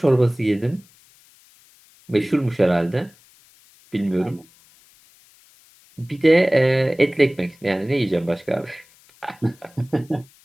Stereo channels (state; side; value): noise; left; hiss, 29 dB below the sound